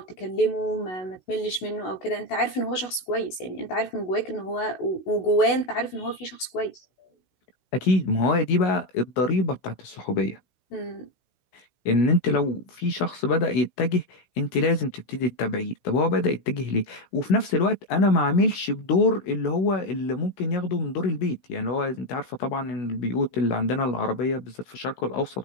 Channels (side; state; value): right; late; 16 ms